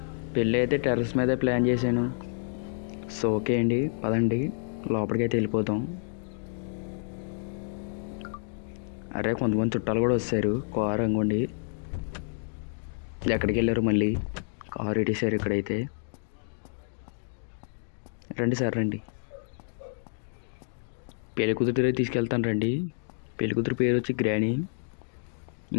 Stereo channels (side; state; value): right; silent; digital silence